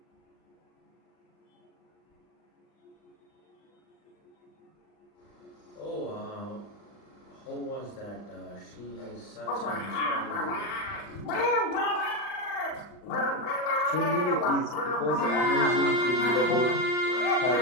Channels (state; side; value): late; right; 39 ms